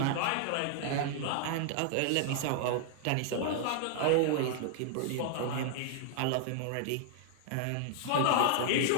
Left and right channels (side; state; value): both; different; correlation -0.01